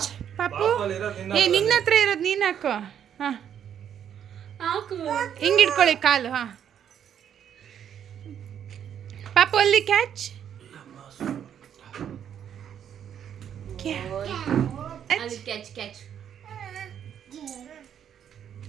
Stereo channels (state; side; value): quieter; left; 9.1 dB